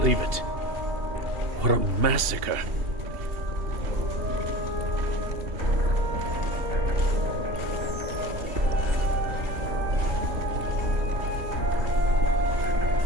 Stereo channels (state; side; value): late; left; 2.8 ms